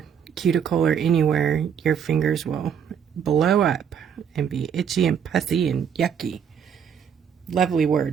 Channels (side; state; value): left; quieter; 7.8 dB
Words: cuticle or anywhere, your fingers will blow up and be itchy and pussy and yucky. Lovely